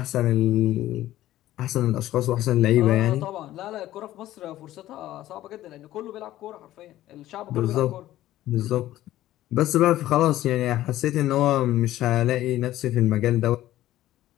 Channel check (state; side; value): quieter; right; 14.4 dB